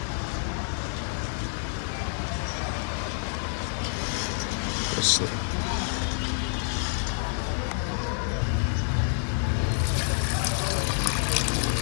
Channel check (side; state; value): right; silent; digital silence